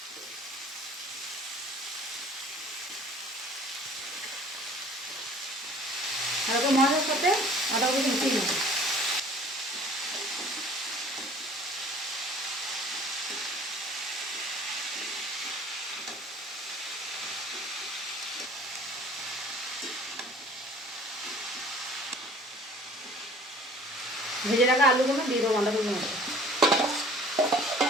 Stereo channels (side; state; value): both; normal; correlation 0.50